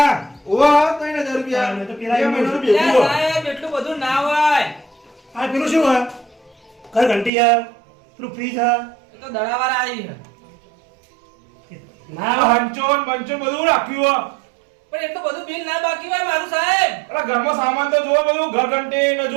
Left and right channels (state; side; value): drops out; left; at 7.3 s